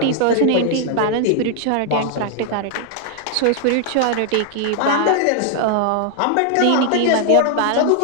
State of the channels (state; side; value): different; both; correlation 0.00